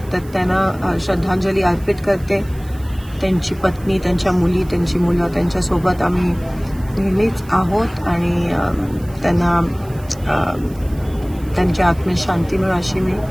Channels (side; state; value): right; noise; hiss, 24 dB below the sound